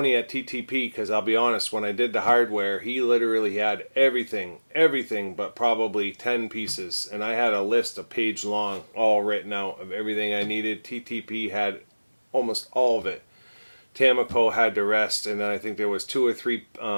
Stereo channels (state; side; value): inverted; both; correlation -1.00